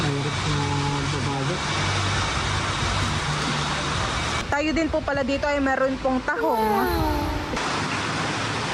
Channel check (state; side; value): identical; both; correlation 1.00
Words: Mayroon na babagat. Tayo din po pala dito ay meron pong tahong.